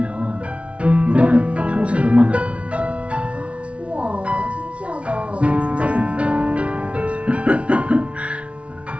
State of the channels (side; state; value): left; late; 0.062 ms